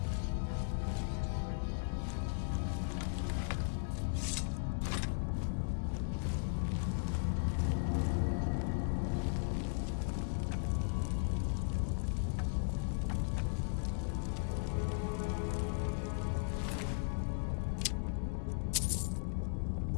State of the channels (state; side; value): silent; right; digital silence